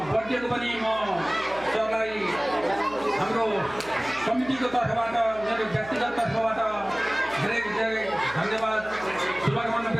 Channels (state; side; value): noise; right; hum, 20 dB below the sound